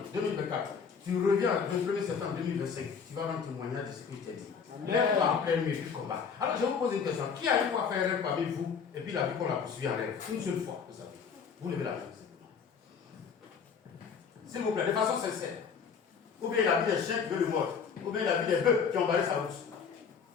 2024. Tu reviens le 1er septembre 2025. Tu vas rendre témoignage de ce que je t'ai dit. Lève-toi en pleine nuit du combat. Alors, je vous pose une question. Qui a une fois fait un rêve parmi vous et puis la vie qu'on l'a poursuivi en rêve? Une seule fois, vous savez. Vous levez la main. S'il vous plaît, de façon sincère. Ou bien la vie des chiens qui veulent le mordre. Ou bien la vie des bœufs qui ont barré sa route.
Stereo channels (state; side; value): quieter; right; 6.3 dB